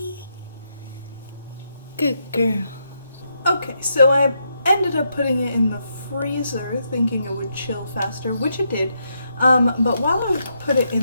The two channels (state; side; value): inverted; both; correlation -0.80